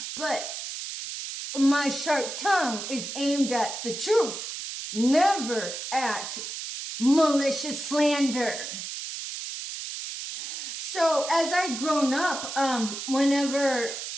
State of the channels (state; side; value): noise; right; hiss, 7 dB below the sound